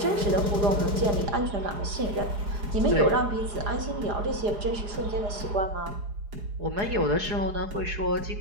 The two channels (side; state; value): left; late; 4.8 ms